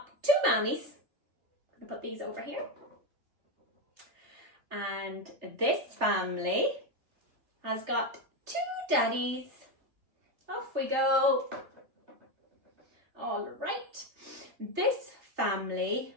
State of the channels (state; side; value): late; left; 3.3 ms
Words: two mammies. I'm gonna put these over here. And this family has got two daddies. Off we go. All right. This family